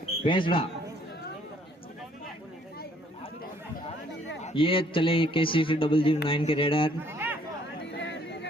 भेंसरा। ये चले KCC009 के रेडर।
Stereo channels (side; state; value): both; normal; correlation 0.63